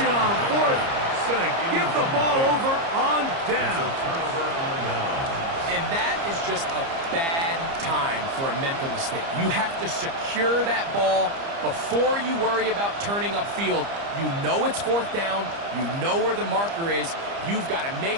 on 4th. Going to give the ball over on down. And that is just a bad time for a mental mistake. You have to secure that ball before you worry about turning upfield. You know it's 4th down. You know where the marker is. You've got to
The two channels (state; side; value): late; left; 30 ms